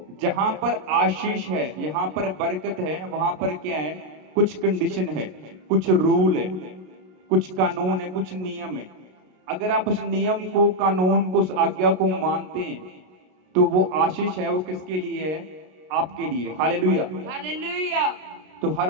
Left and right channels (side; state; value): left; late; 33 ms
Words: जहां पर आशीष है, यहां पर बरकत है, वहां पर क्या है? कुछ कंडीशन है, कुछ रूल है, कुछ कानून है, कुछ नियम है। अगर आप उस नियम को, कानून को, उस आज्ञा को मानते हैं तो वो आशीष है, वो किसके लिए है? आपके लिए। हालेलुया। हालेलुया। तो